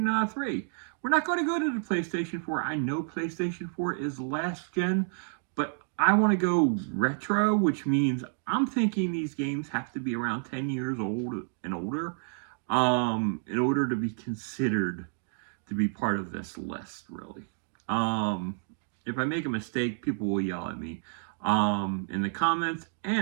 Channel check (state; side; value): silent; left; digital silence